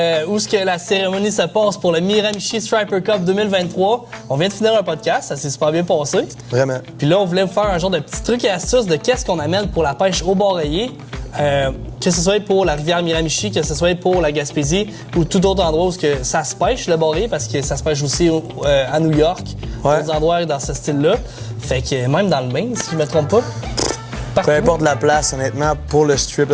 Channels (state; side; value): identical; both; correlation 1.00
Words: où est-ce que la cérémonie se passe pour le Miramichi Striper Cup 2023. On vient de finir un podcast, ça s'est super bien passé. Vraiment. Puis là, on voulait vous faire un genre de petit truc et astuce de qu'est-ce qu'on amène pour la pêche au bord rayé. Que ce soit pour la rivière Miramichi, que ce soit pour la Gaspésie ou tout autre endroit où que ça se pêche, le bord rayé, parce que ça se pêche aussi à New York, d'autres endroits dans ce style-là. Fait que même dans le Maine, si je me trompe pas. Peu importe la place, honnêtement, pour le